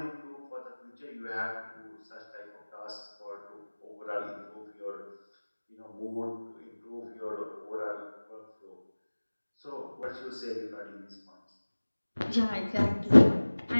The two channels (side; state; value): both; inverted; correlation -1.00